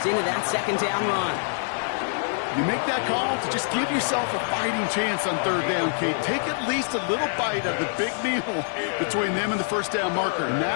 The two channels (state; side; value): silent; right; 62 dB below the other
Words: into that second down run. You make that call to just give yourself a fighting chance on 3rd down, Kate. Take at least a little bite of the big meal between them and the first down marker. And